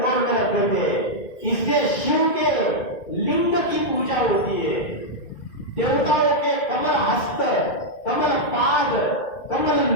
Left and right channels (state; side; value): late; right; 2.1 ms